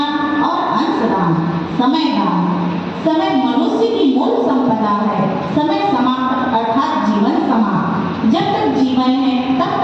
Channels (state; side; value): identical; both; correlation 1.00